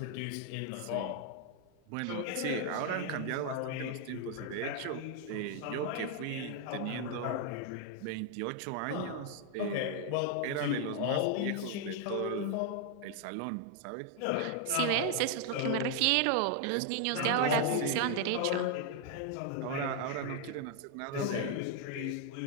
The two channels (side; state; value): both; different; correlation 0.00